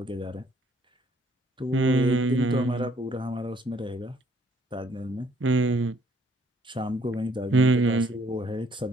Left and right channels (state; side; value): normal; both; correlation 0.64